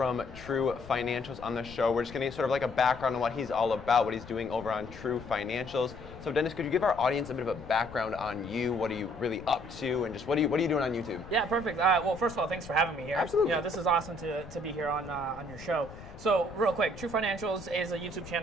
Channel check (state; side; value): noise; left; rumble, 16 dB below the sound